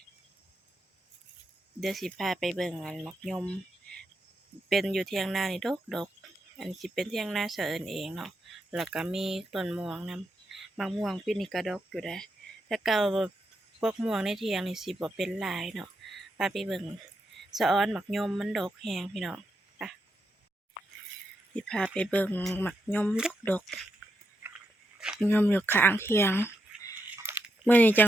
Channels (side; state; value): both; normal; correlation 0.83